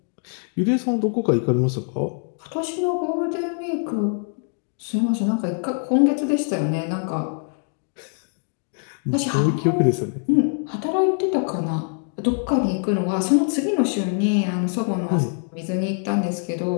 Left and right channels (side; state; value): right; silent; 55 dB below the other